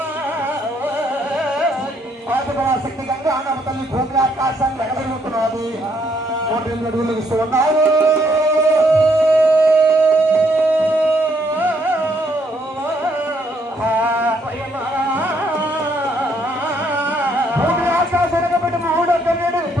శక్తి గంగా నవతల్లి భూమి ఆకాశాన్ని ఎగబెరుగుతున్నది. 108 అడుగులు ఇస్తూ ఉన్నారు. భూమి ఆకాశం ఎగబెట్టి 308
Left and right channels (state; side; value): normal; both; correlation 0.71